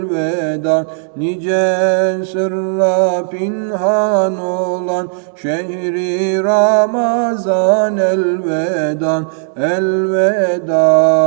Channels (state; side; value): silent; left; digital silence